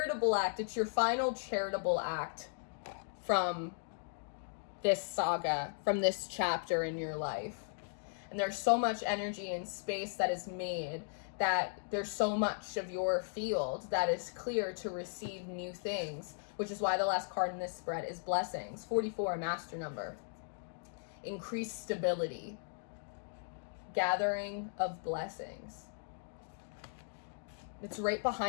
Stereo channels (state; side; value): silent; right; digital silence